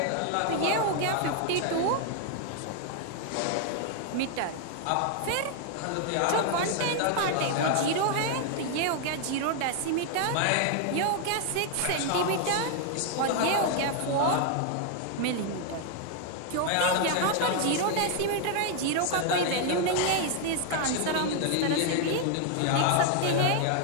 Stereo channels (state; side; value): different; both; correlation 0.00